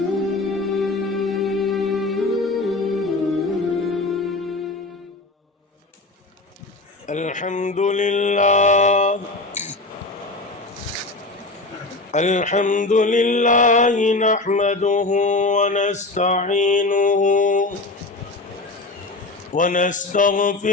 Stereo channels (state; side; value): quieter; right; 3.1 dB